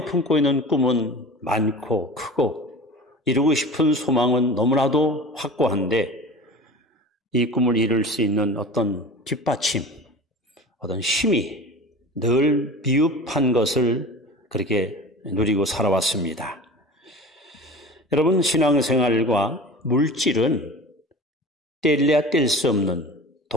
품고 있는 꿈은 많고 크고 이루고 싶은 소망은 너무나도 확고한데 이 꿈을 이룰 수 있는 어떤 뒷받침, 어떤 힘이 늘 미흡한 것을 그렇게 누리고 살아왔습니다. 여러분, 신앙생활과 물질은 뗄래야 뗄 수 없는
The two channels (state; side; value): normal; both; correlation 0.37